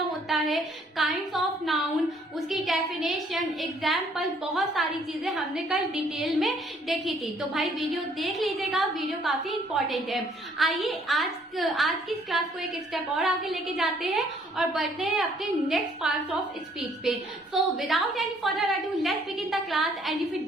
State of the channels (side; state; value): both; normal; correlation 0.63